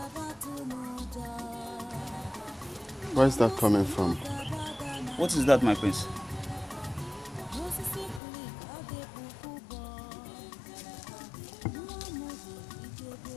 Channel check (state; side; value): drops out; right; at 8.2 s